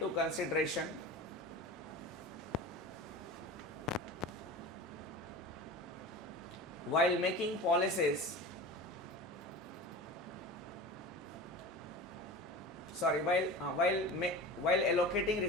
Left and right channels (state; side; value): normal; both; correlation 0.33